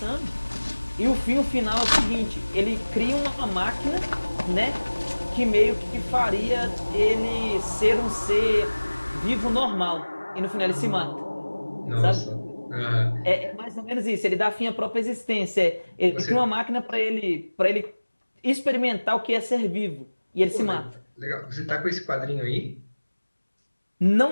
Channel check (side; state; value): both; inverted; correlation -1.00